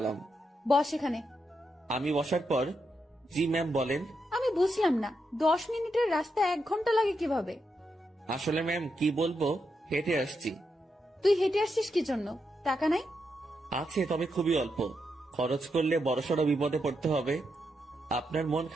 বস এখানে। আমি বসার পর, জি ম্যাম বলেন। আমি বুঝলাম না, 10 মিনিটের রাস্তা 1 ঘন্টা লাগে কিভাবে? আসলে ম্যাম কি বলবো, হেঁটে আসছি। তুই হেঁটে আসছিস কি জন্য? টাকা নাই? আছে, তবে খুবই অল্প। খরচ করলে বড়সড় বিপদে পড়তে হবে। আপনার মন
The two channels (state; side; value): normal; both; correlation 0.83